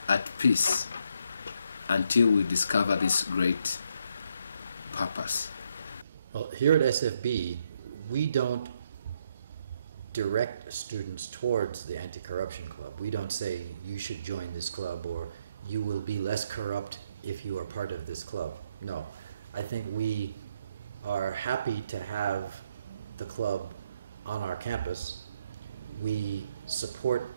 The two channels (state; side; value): inverted; both; correlation -0.74